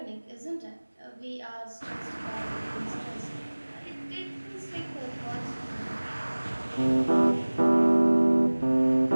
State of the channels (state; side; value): inverted; both; correlation -1.00